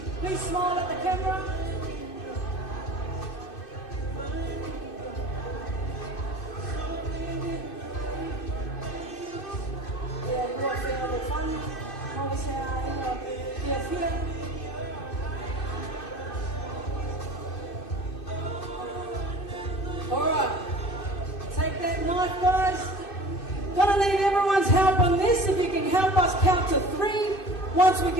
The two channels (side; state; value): right; late; 2.6 ms